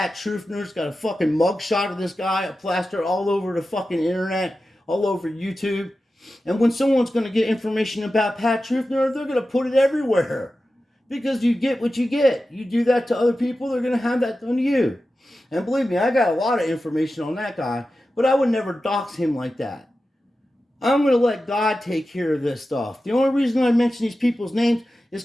Truthner's got a fucking mugshot of this guy, a plaster all over the fucking internet, all over YouTube. And when someone's going to get information about Pat Truthner, they're going to put it everywhere. Because you get what you get. You do that to other people, they're going to have that done to you. And believe me, I got a lot of information on that guy, but I would never dox him like that. I'm going to let God take care of this stuff. The only reason I mention these people's names is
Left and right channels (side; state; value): both; normal; correlation 0.93